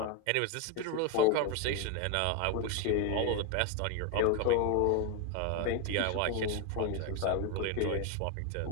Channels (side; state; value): both; different; correlation 0.01